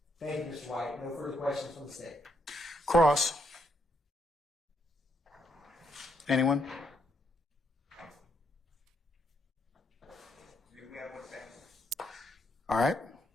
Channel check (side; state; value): both; normal; correlation 0.76